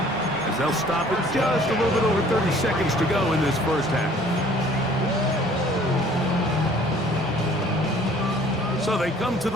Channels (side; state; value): both; normal; correlation 0.54